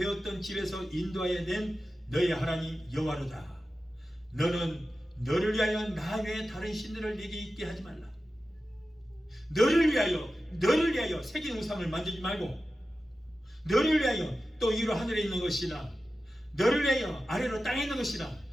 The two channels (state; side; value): normal; both; correlation 0.93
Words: 집에서 인도하여 낸 너의 하나님 여호와로다. 너는 너를 위하여 나 외에 다른 신들을 네게 있게 하지 말라. 너를 위하여 새긴 우상을 만들지 말고, 너를 위하여 또 위로 하늘에 있는 것이나 너를 위하여 아래로 땅에 있는 것이나